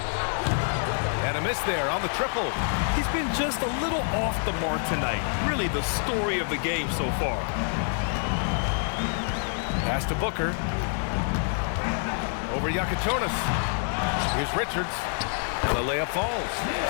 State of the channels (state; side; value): silent; right; 60 dB below the other